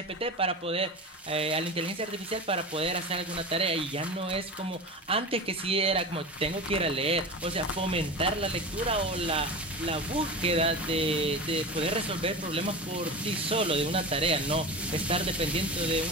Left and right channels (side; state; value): both; normal; correlation 0.28